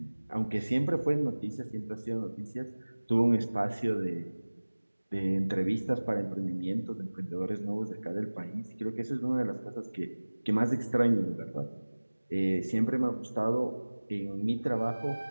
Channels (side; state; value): both; inverted; correlation -1.00